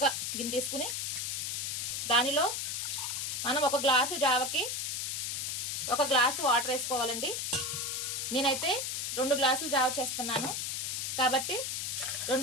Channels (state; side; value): noise; left; hiss, 2 dB below the sound